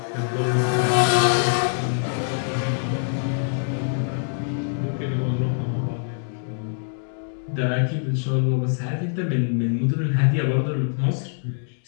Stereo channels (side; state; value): right; silent; digital silence